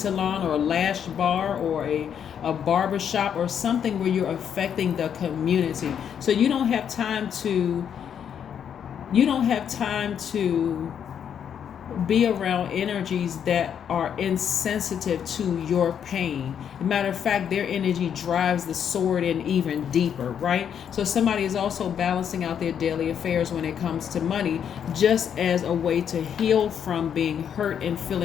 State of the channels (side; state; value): right; quieter; 8.4 dB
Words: or a lash bar or a barber shop or something where you're affecting the community. So you don't have time to be around energies that are insensitive to your pain. Matter of fact, their energy drives the sword in even deeper, right? So somebody is also balancing out their daily affairs when it comes to money, just as a way to heal from being hurt and